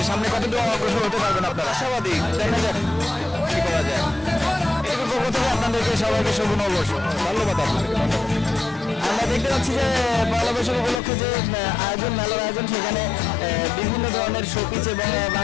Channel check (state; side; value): drops out; right; at 11.0 s